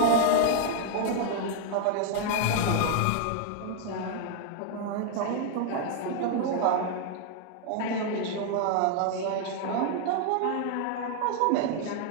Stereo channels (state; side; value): different; both; correlation 0.00